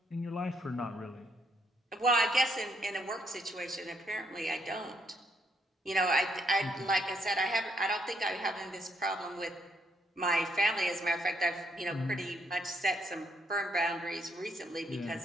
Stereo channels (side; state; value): both; normal; correlation 0.73